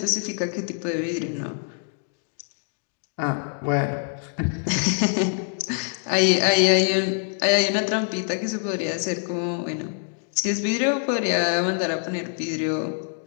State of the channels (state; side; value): silent; right; 62 dB below the other